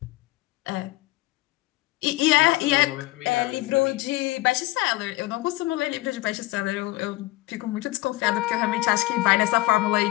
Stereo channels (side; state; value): right; quieter; 19.6 dB